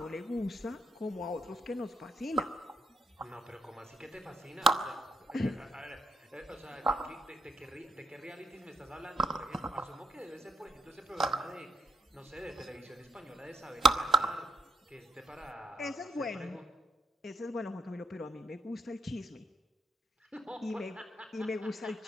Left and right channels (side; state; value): both; normal; correlation 0.78